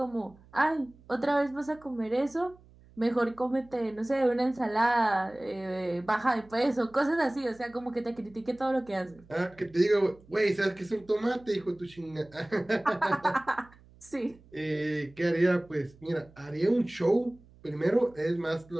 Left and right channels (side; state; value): right; noise; hum, 26 dB below the sound